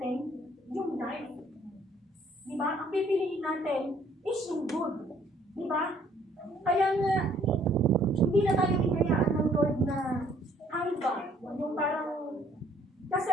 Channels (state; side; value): normal; both; correlation 0.62